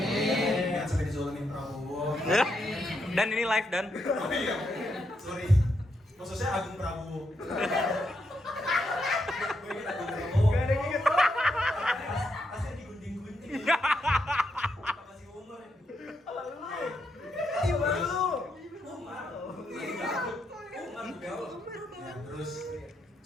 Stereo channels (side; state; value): both; normal; correlation 0.81